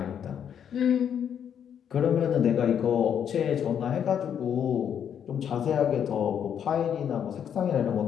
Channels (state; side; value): quieter; right; 8.6 dB